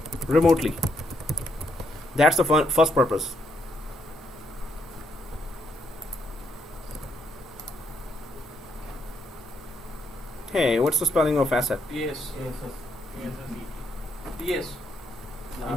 remotely, that's the first purpose. Hey, what's the spelling of asset? Yes. Yes, yes. Yes.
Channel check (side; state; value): both; normal; correlation 0.74